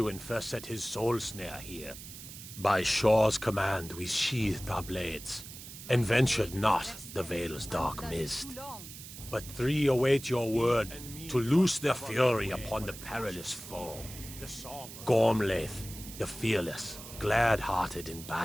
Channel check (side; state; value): right; noise; hiss, 13 dB below the sound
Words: first set his soul snare here. By Shor's command, we sheathed our blades, and ventured not the Vale's dark mist. But three await your word to loose their fury upon the perilous foe. Gormlaith, the fearless, glad-hearted in